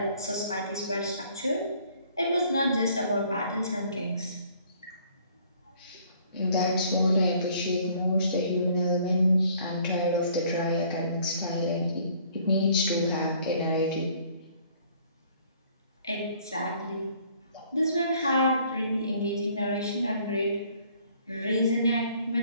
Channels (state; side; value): inverted; both; correlation -0.59